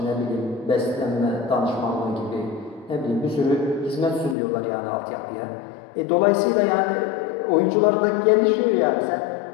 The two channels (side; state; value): right; drops out; at 4.4 s